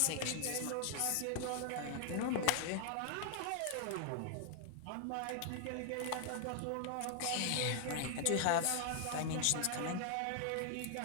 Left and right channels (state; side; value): different; both; correlation 0.00